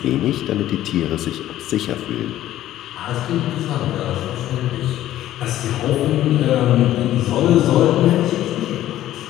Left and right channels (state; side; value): quieter; right; 13.3 dB